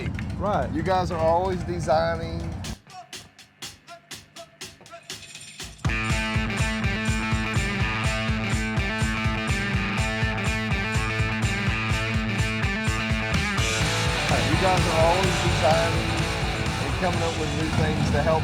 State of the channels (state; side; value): identical; both; correlation 1.00